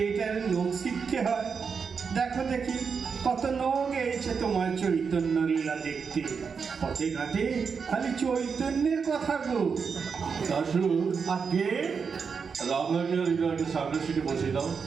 লোক শিখতে হয়? দেখো দেখি কত লোক এসেছে তোমার চৈতন্য লীলা দেখতে। পথে ঘাটে খালি চৈতন্যের কথা গো। দাশু, আগে রামলাকে আর হৃদয়কে সামনের সিটে বসিয়ে দাও।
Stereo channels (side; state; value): left; quieter; 5.8 dB